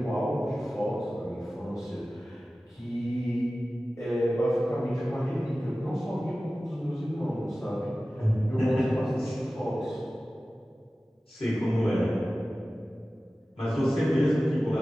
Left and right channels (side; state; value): both; normal; correlation 0.96